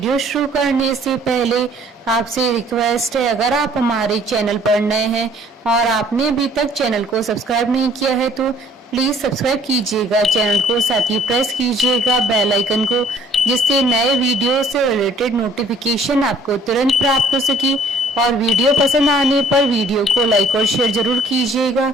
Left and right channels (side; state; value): both; normal; correlation 0.57